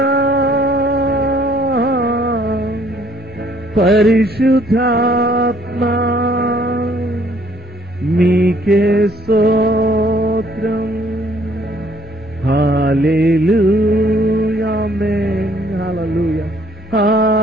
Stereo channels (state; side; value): normal; both; correlation 0.63